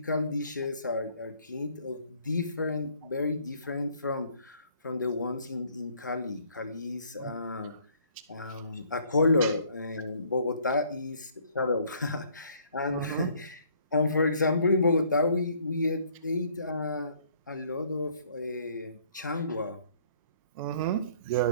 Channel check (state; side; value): inverted; both; correlation -0.61